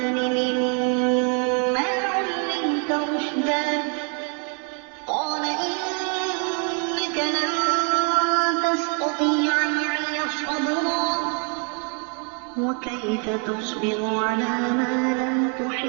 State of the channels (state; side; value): quieter; left; 38.7 dB